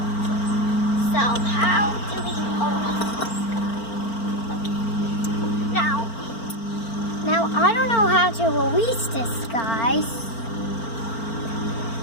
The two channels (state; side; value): late; right; 4.4 ms